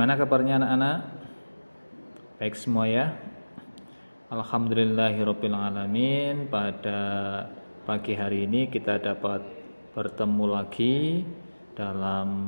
kabarnya anak-anak? Baik semua ya? Alhamdulillahirabbil alamin. Pada pagi hari ini kita dapat bertemu lagi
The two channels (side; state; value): both; inverted; correlation -1.00